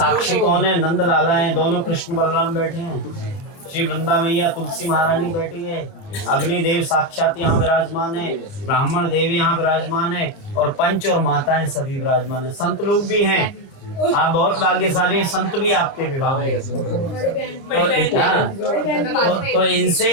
कौन है? नंद लाला हैं, दोनों कृष्ण बलराम बैठे हैं, श्री वृंदा मैया तुलसी महारानी बैठी है, अग्निदेव साक्षात यहाँ विराजमान है, ब्राह्मण देव यहाँ विराजमान है और पंच और माताएं सभी विराजमान है, संत लोग भी हैं। आप बहुत भाग्यशाली हैं, संत भी आपके विवाह में तो इनसे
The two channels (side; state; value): right; late; 30 ms